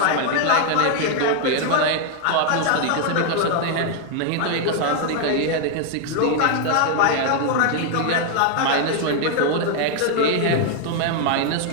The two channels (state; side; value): different; both; correlation 0.00